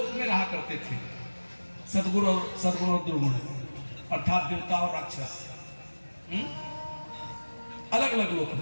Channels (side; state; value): both; inverted; correlation -1.00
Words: में रहा करते थे, सद्गुरु और दुर्गुण, अर्थात देवता और राक्षस। अलग अलग लोक